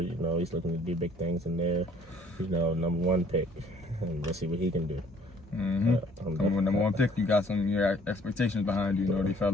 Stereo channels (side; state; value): both; normal; correlation 0.58